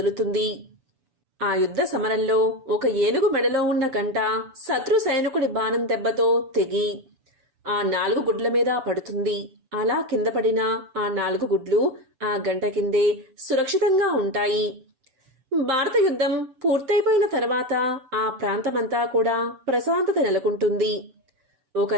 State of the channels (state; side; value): late; left; 7.0 ms